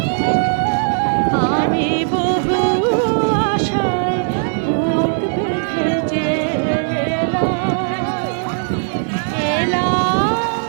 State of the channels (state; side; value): silent; left; 66 dB below the other